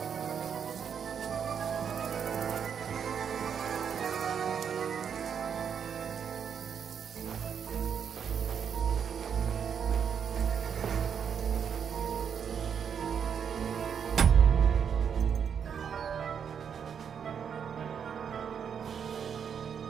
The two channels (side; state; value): left; quieter; 7.5 dB